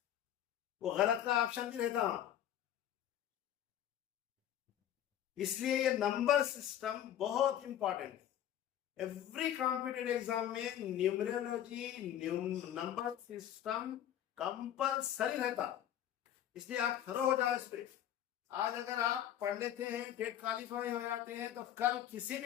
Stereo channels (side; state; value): right; quieter; 11.1 dB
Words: वो गलत का ऑप्शन भी रहता, इसलिए ये नंबर सिस्टम बहुत इंपॉर्टेंट है। एवरी कॉम्पिटेटिव एग्जाम में न्यूमरोलॉजी नंबर सिस्टम कंपलसरी रहता, इसलिए आप थरो हो जाओ इस पे। आज अगर आप पढ़ लेते हैं, टेट क्वालिफाई हो जाते हैं, तो कल किसी